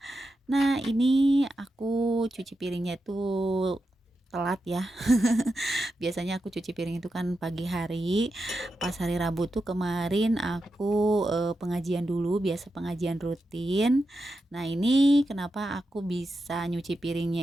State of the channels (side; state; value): both; normal; correlation 0.88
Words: Nah, ini aku cuci piringnya itu telat ya. Biasanya aku cuci piring itu kan pagi hari. Pas hari Rabu tuh kemarin aku pengajian dulu, biasa pengajian rutin. Nah, ini kenapa aku bisa nyuci